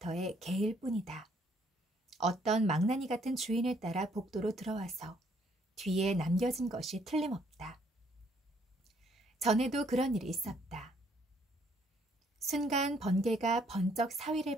개일 뿐이다. 어떤 망나니 같은 주인을 따라 복도로 들어와서 뒤에 남겨진 것이 틀림없다. 전에도 그런 일이 있었다. 순간 번개가 번쩍 사위를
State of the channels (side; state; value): both; normal; correlation 0.67